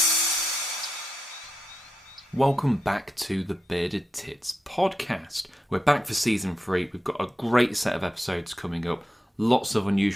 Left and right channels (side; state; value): both; normal; correlation 0.87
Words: Welcome back to the Bearded Tits podcast. We're back for season 3. We've got a great set of episodes coming up. Lots of